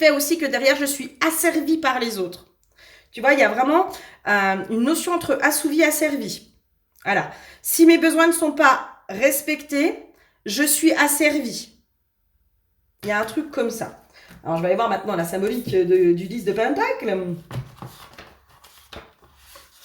aussi que derrière, je suis asservie par les autres. Tu vois, il y a vraiment une notion entre assouvi et asservi. Voilà. Si mes besoins ne sont pas respectés, je suis asservie. Il y a un truc comme ça. Alors, je vais aller voir maintenant la symbolique du 10 de Pentacle.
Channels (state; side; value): identical; both; correlation 1.00